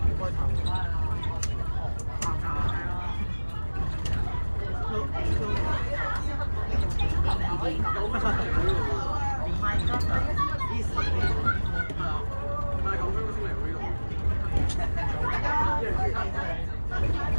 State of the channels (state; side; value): inverted; both; correlation -1.00